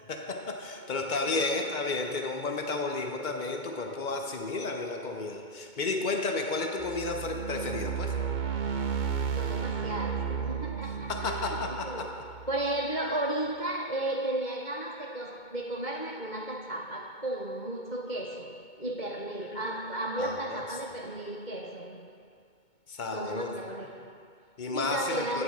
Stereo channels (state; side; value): late; right; 2.2 ms